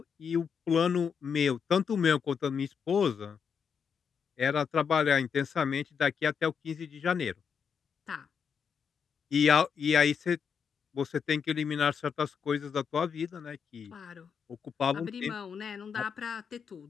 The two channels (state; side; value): quieter; right; 6.7 dB